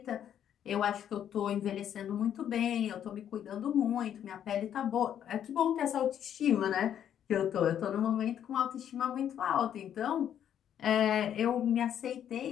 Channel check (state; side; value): quieter; right; 9.8 dB